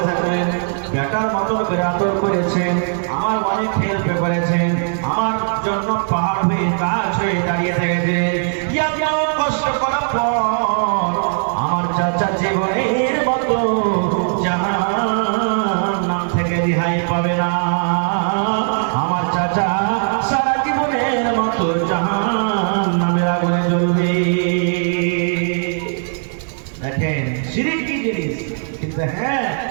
বেটার মতো করে আদর করেছেন, আমার অনেক হেল্প করেছেন, আমার জন্য পাহাড় হয়ে গাছ হয়ে দাঁড়িয়ে থেকেছে। কষ্ট করার পর আমার চাচা জীবনের মতো জাহান্নাম থেকে রেহাই পাবে না। আমার চাচা সারা জীবনের মতো জাহান্নামের আগুনে জ্বলবে। দেখেন শিরক কি জিনিস, কিন্তু হ্যাঁ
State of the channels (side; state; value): left; silent; digital silence